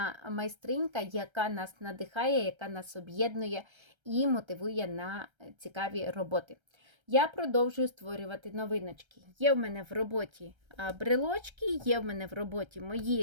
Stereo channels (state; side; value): late; left; 1.3 ms